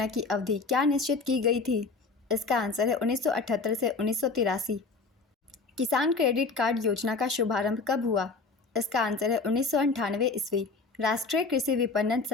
की अवधि क्या निश्चित की गई थी? इसका आंसर है 1978 से 1983। किसान क्रेडिट कार्ड योजना का शुभारंभ कब हुआ? इसका आंसर है 1998 ईस्वी। राष्ट्रीय कृषि विपणन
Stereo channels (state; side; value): quieter; right; 4.2 dB